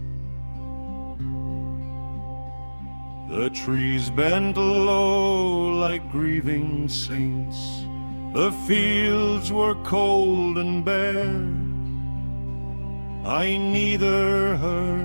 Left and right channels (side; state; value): both; inverted; correlation -1.00